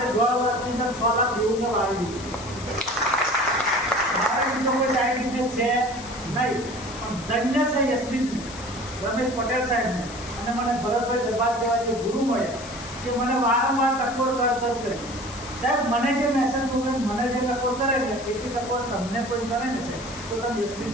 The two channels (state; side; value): noise; left; hiss, 15 dB below the sound